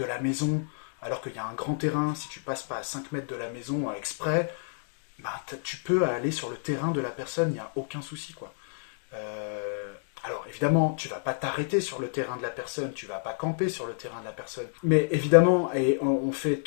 la maison, alors qu'il y a un grand terrain, si tu passes pas à 5 mètres de la maison exprès, bah, tu peux aller sur le terrain de la personne, il n'y a aucun souci, quoi. Euh, alors évidemment, tu vas pas t'arrêter sur le terrain de la personne, tu vas pas camper sur le terrain de la personne. Mais évidemment, et on fait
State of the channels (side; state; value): right; silent; digital silence